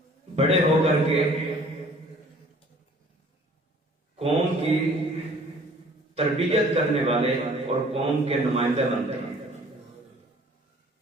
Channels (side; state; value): both; normal; correlation 0.53